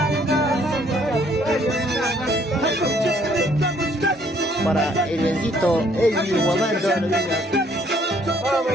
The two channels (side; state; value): both; normal; correlation 0.64